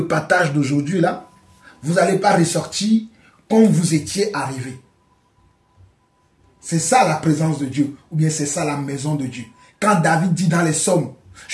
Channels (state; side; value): identical; both; correlation 1.00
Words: partage d'aujourd'hui, là, vous n'allez pas ressortir comme vous étiez arrivé. C'est ça la présence de Dieu, ou bien c'est ça la maison de Dieu. Quand David dit dans les psaumes,